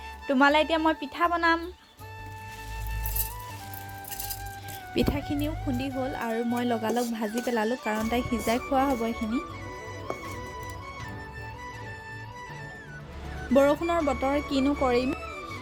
তোমালে এতিয়া মই পিঠা বনাম। পিঠাখিনিও খুন্দি হ'ল আৰু মই লগালগ ভাজি পেলালো কাৰণ তাই সিজাই খোৱা হ'ব এখিনি। বৰষুণৰ বতৰ কিনো কৰিম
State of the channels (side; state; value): both; identical; correlation 1.00